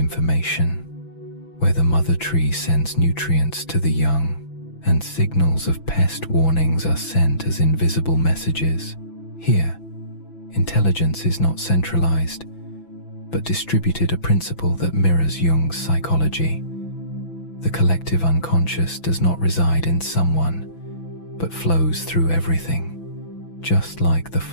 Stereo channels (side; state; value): right; late; 6.0 ms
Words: where the mother tree sends nutrients to the young, and signals of pest warnings are sent as invisible messages. Here, intelligence is not centralized, but distributed, a principle that mirrors Jung's psychology. The collective unconscious does not reside in someone, but flows through everything. Just like the